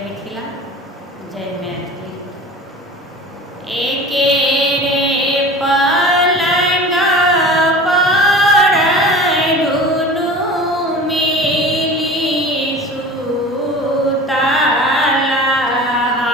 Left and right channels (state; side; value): normal; both; correlation 0.38